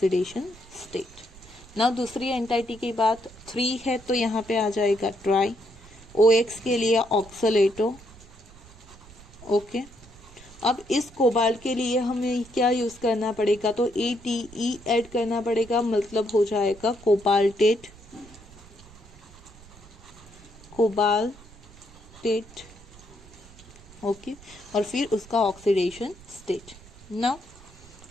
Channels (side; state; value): right; noise; rumble, 22 dB below the sound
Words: स्टेट। ना दूसरी एंटाइटी की बात 3 है तो यहाँ पे आ जाएगा ट्राई। OX के लिए ऑक्सलेटो। ओके, अब इस कोबाल्ट के लिए हमें क्या यूज करना पड़ेगा, तो ATE ऐड करना पड़ेगा, मतलब हो जाएगा कोबाल्टेट। कोबाल्टेट। ओके, और फिर उसका oxidation state. Now